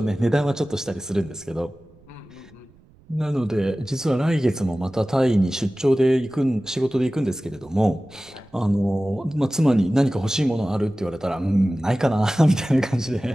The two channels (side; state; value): right; noise; rumble, 28 dB below the sound